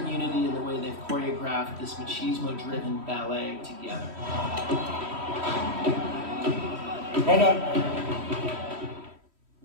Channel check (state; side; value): late; left; 3.1 ms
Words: unity in the way they've choreographed this machismo-driven ballet together. Hold on.